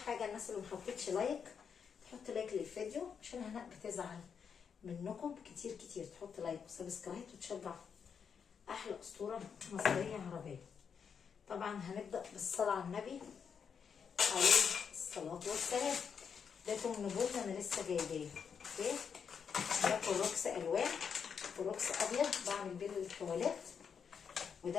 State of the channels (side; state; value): right; quieter; 6.8 dB